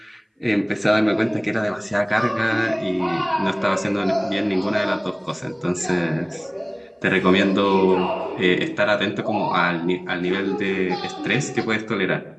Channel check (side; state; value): both; identical; correlation 1.00